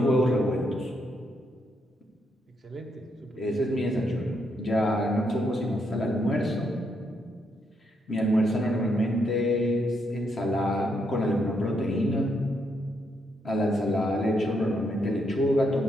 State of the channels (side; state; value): both; normal; correlation 0.77